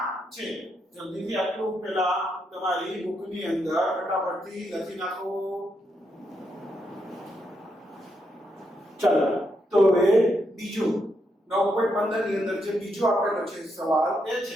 છે જલ્દીથી આટલું પહેલા તમારી બુકની અંદર ફટાફટથી લખી નાખો ચાલો તો હવે બીજું 9.15 ની અંદર જે બીજો આપેલો છે સવાલ એ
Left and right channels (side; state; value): both; normal; correlation 0.80